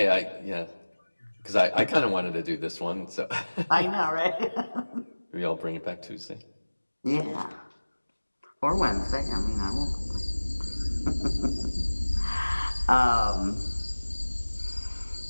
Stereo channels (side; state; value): both; inverted; correlation -1.00